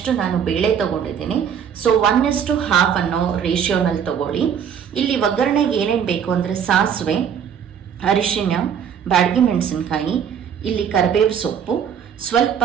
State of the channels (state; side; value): quieter; left; 8.1 dB